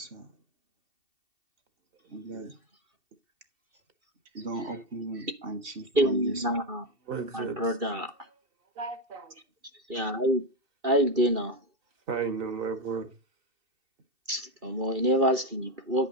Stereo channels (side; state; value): left; late; 2.7 ms